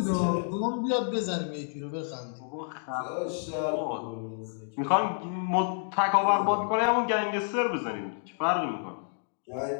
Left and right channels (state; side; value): silent; right; digital silence